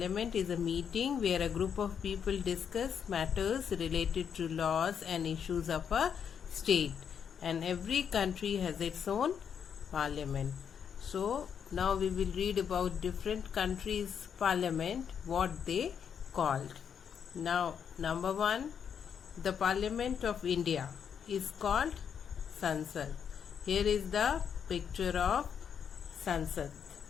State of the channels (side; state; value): right; quieter; 7.6 dB